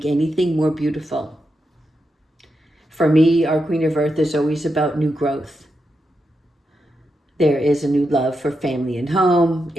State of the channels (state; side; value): normal; both; correlation 0.86